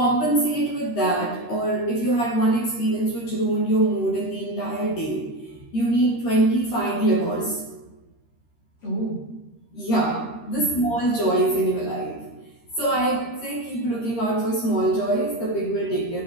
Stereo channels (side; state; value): right; late; 13 ms